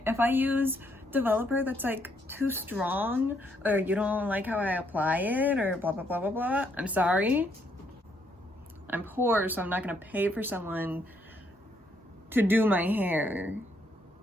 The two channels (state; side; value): normal; both; correlation 0.73